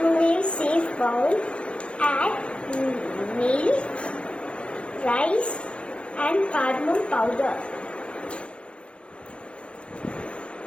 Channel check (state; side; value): late; right; 0.060 ms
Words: safe bowl, add milk, rice and cardamom powder.